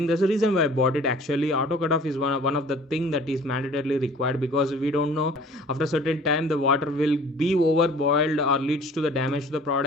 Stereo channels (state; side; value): normal; both; correlation 0.49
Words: That's the reason why I bought it. Actually, auto cutoff is one of the thing that is mandatorily required, because we don't know after a certain time the water will be over boiled or leads to the damage to the